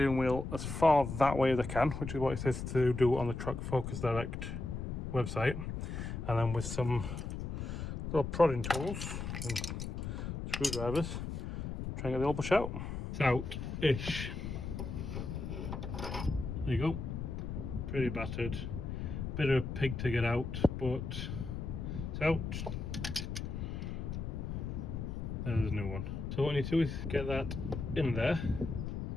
wheel as far that way as I can, which is what it says to do on the Truck Focus Direct website, and then with some little prodding tools and screwdrivers, try and get the old bush out. It's out-ish. There you go. Pretty battered. Bit of a pig to get out, but it's out. There's a new one. So what I need to do is get that in there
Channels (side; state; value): left; noise; rumble, 5 dB below the sound